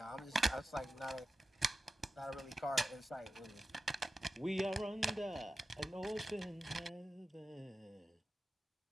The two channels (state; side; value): normal; both; correlation 0.93